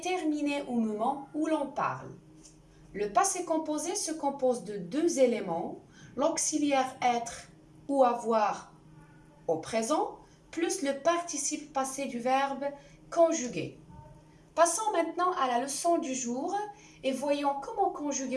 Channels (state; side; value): identical; both; correlation 1.00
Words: au moment où l'on parle. Le passé composé se compose de deux éléments, l'auxiliaire être ou avoir au présent, plus le participe passé du verbe conjuguer. Passons maintenant à la leçon du jour et voyons comment